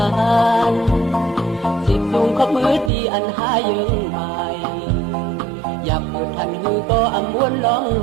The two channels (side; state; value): left; drops out; at 2.9 s